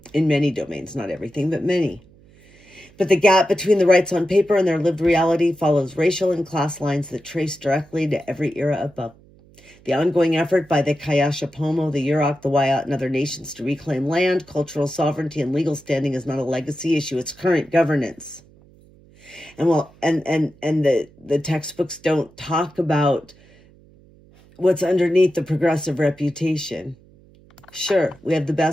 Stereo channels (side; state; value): right; noise; hum, 27 dB below the sound